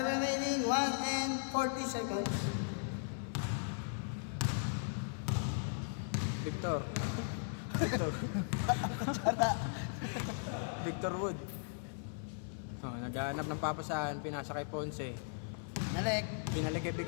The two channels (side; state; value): right; silent; 53 dB below the other